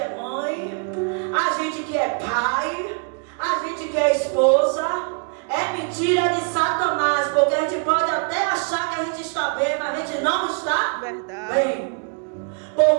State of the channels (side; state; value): left; quieter; 38.6 dB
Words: mãe, a gente que é pai, a gente que é esposa, é mentira de Satanás. Porque a gente pode até achar que a gente está bem, mas a gente não está bem.